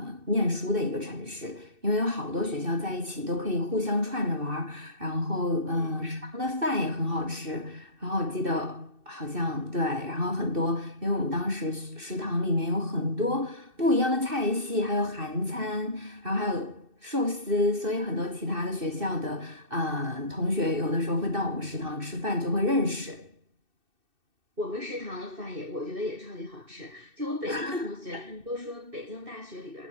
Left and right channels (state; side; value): late; left; 2.6 ms